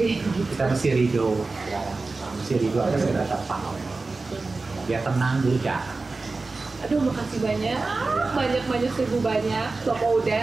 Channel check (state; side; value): quieter; left; 3.7 dB